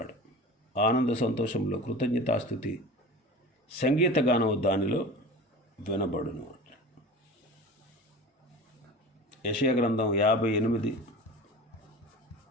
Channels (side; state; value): both; normal; correlation 0.35